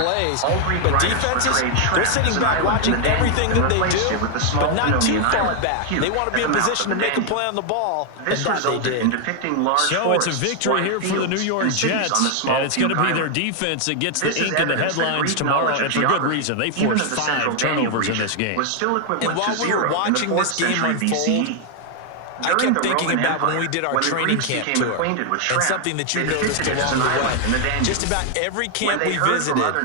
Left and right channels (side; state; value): both; different; correlation 0.00